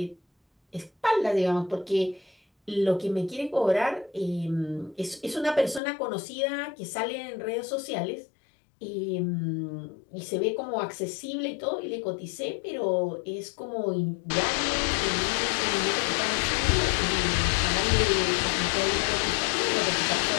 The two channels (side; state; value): right; drops out; at 5.8 s